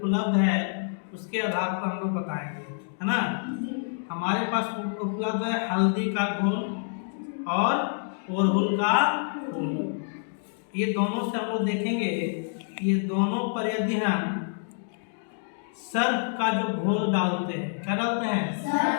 है उसके आधार पर हम लोग बताएंगे, है ना। हमारे पास उपलब्ध है हल्दी का घोल और अड़हुल का फूल। ये दोनों से हम लोग देखेंगे, ये दोनों पर यदि हम सर्फ का जो घोल डालते हैं, क्या डालते हैं,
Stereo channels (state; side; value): silent; right; digital silence